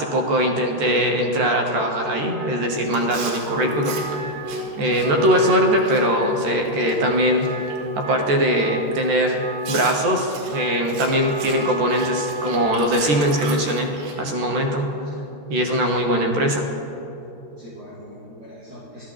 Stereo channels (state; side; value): late; left; 14 ms